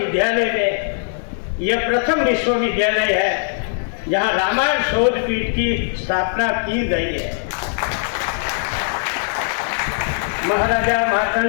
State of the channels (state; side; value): silent; right; digital silence